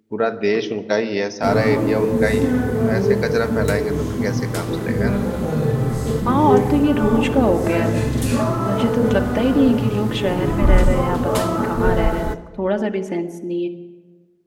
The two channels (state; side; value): identical; both; correlation 1.00